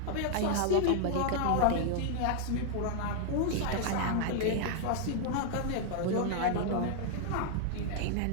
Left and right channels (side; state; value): both; different; correlation 0.00